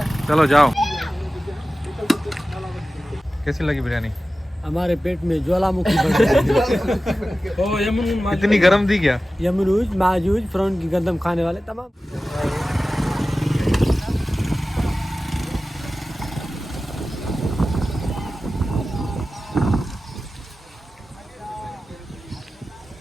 चलो जाओ। कैसी लगी बिरयानी? हमारे पेट में ज्वालामुखी बढ़ गई। इतनी गरम थी क्या? यमरूज माजूज फ्रॉन की गंदम खाने वाले तमाम।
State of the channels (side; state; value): both; normal; correlation 0.95